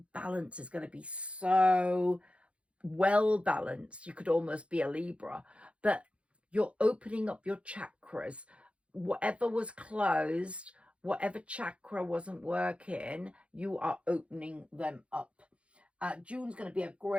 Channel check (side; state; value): left; late; 0.061 ms